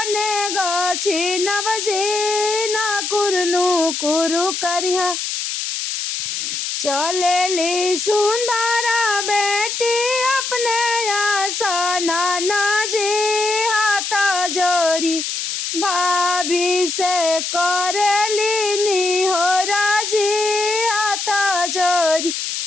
ने गछिनब जी ना कुरनु कुरु करिया चलेली सुंदरा बेटी अपने आसना जी हाथ जोरी भाभी से करेली निहोरा जी हाथ जोरी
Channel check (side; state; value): left; noise; hiss, 3 dB below the sound